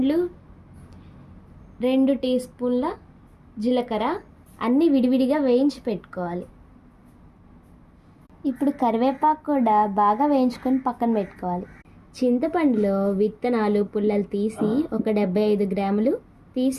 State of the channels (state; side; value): identical; both; correlation 1.00